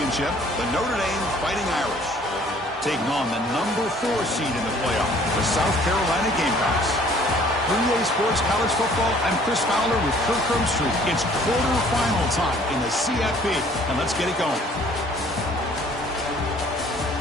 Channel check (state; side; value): normal; both; correlation 0.56